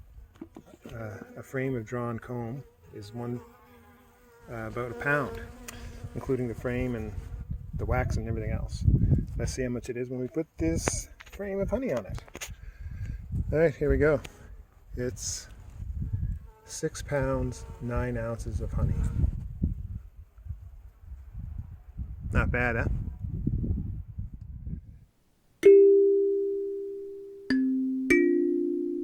a frame of drawn comb is about a pound, including the frame and the wax and everything else. Let's see how much it is when we put this frame of honey on it. All right, here we go. It's 6 pounds, 9 ounces of honey. Not bad, huh?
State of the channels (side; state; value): both; identical; correlation 1.00